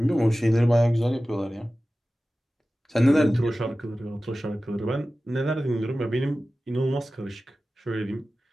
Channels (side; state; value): both; normal; correlation 0.95